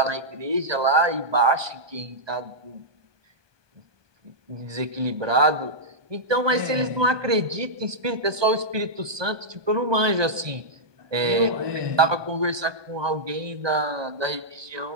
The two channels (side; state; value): left; late; 1.2 ms